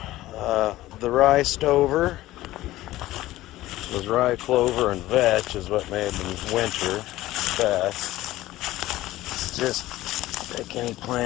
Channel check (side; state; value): right; quieter; 16.2 dB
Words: the rye stover. It was rye, clover, and vetch is what made them winter best. It's just like any